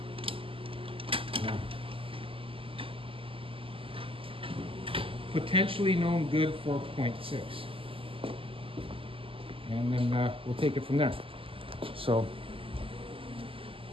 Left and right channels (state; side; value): late; left; 0.26 ms